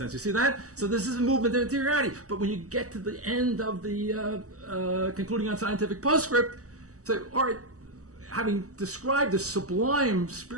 You see that? So this is a movement of interiority. But when you get to the end of the concluding on scientific postscript, say, all right, having described the sublime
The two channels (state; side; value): late; left; 0.66 ms